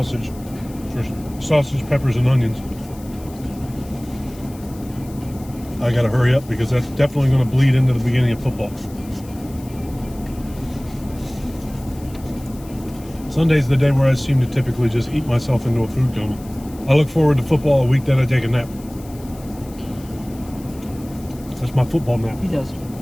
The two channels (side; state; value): left; noise; hiss, 22 dB below the sound